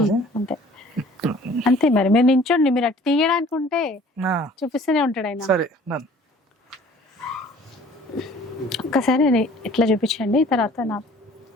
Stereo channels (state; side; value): normal; both; correlation 0.51